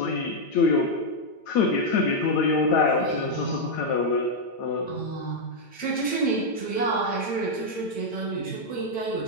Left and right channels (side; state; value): right; late; 8.9 ms